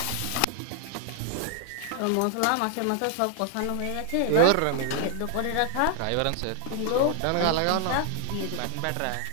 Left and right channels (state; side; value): different; both; correlation 0.00